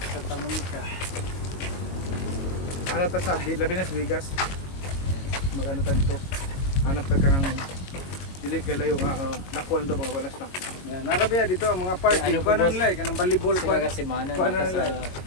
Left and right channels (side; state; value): right; late; 22 ms